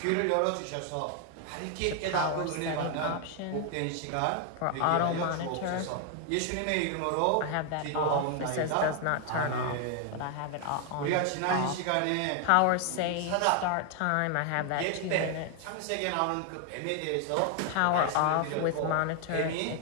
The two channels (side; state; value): both; different; correlation 0.00